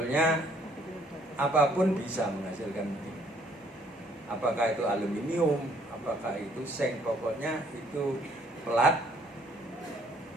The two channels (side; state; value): both; normal; correlation 0.64